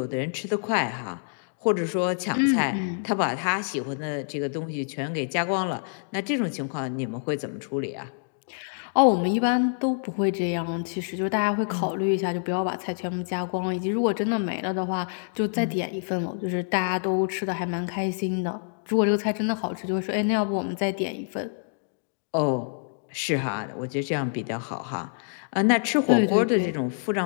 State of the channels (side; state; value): right; silent; digital silence